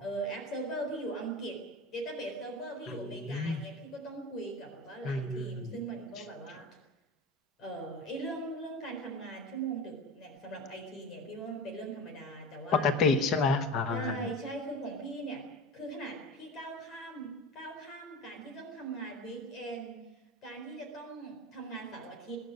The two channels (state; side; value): normal; both; correlation 0.31